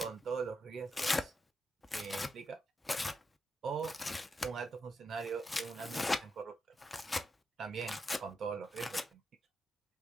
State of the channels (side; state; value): both; normal; correlation 0.85